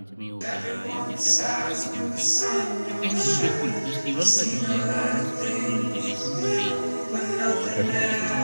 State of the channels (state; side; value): inverted; both; correlation -1.00